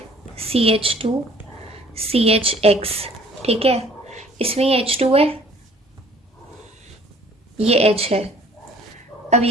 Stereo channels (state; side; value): normal; both; correlation 0.55